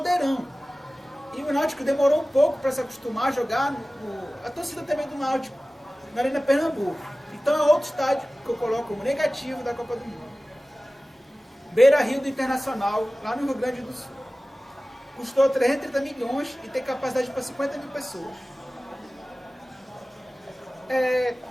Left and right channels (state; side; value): normal; both; correlation 0.97